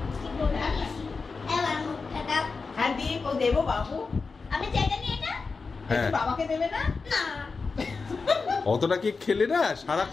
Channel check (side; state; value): right; quieter; 4.5 dB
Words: এবার মুখটা দাও। হ্যাঁ দিয়ে কো দেবো বাবু। আমি জায়গা নিয়ে এটা? হ্যাঁ একটু বাবাকে দেবে না? না। অতটা কি খেলে না